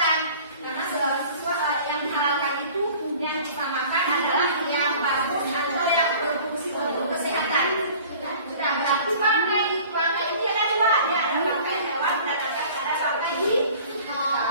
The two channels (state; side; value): inverted; both; correlation -0.47